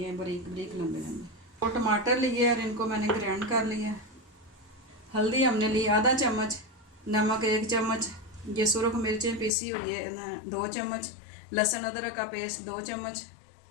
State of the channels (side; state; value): right; drops out; at 9.5 s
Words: हैं बारीक बारीक लंबे लंबे। 2 टमाटर लिए और इनको मैंने ग्राइंड कर लिया। हल्दी हमने ली आधा चम्मच, नमक 1 चम्मच, ये सुरख मिर्चें पीसी हुई है 2 चम्मच, लहसुन अदरक का पेस्ट 2 चम्मच,